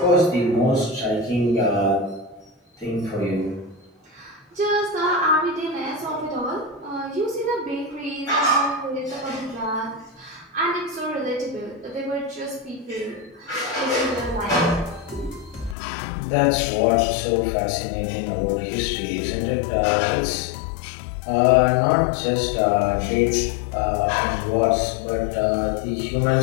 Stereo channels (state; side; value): drops out; right; at 15.8 s